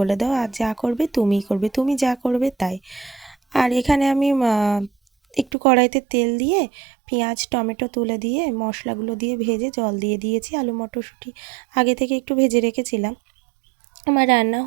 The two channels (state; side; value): drops out; left; at 5.6 s